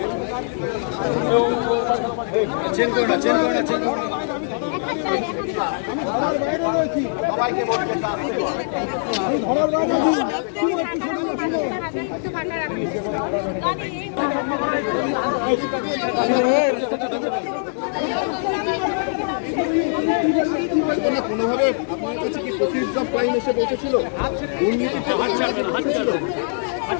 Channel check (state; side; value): silent; right; 57 dB below the other